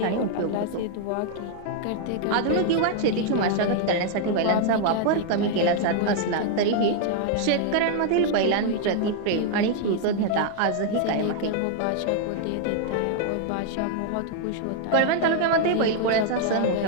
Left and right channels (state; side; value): different; both; correlation -0.01